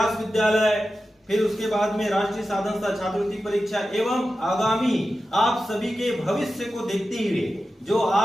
विद्यालय, फिर उसके बाद में राष्ट्रीय साधन छात्रवृत्ति परीक्षा एवं आगामी आप सभी के भविष्य को देखते हुए जो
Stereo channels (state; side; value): normal; both; correlation 0.92